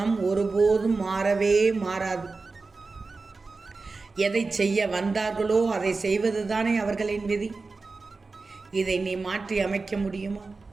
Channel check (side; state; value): left; quieter; 4.0 dB